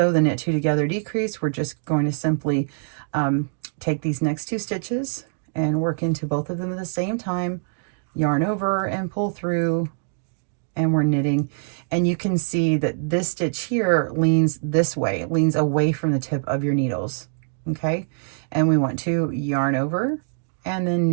the knit 2 together decrease, we're just going to simply take these next 2 stitches and work into both of them at the same time, yarn over and pull through, and we're knitting. And you can see that this stitch here leans this way, it leans away from the tip of your needles, okay? And we want to yarn over and then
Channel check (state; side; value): silent; left; digital silence